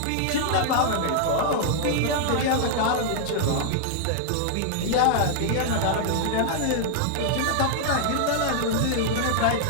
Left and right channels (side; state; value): both; different; correlation -0.01